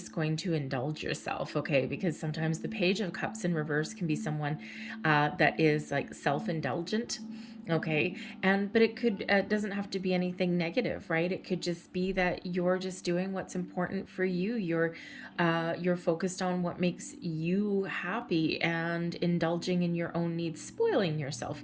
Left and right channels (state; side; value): identical; both; correlation 1.00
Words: going to indulge yourself, okay? Because sometimes the Page of Cups in reverse can be someone that is like self-indulgent. Okay, but it doesn't have to be anything negative, right? It could just be that you're just doing what's important for you. You're focused on what makes you happy and indulging in your own needs, spoiling yourself